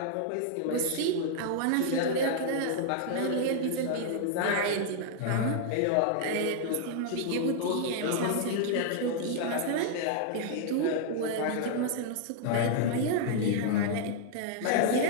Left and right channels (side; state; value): both; different; correlation -0.01